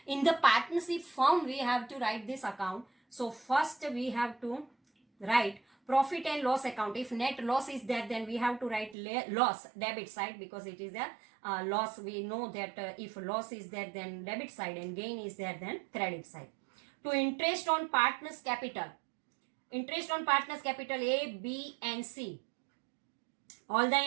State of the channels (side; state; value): left; drops out; at 9.0 s